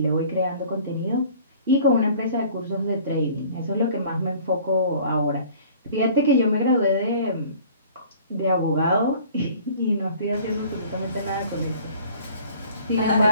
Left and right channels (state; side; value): inverted; both; correlation -0.50